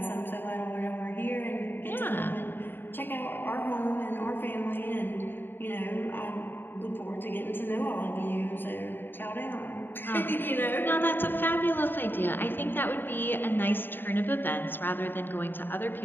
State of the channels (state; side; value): late; right; 0.095 ms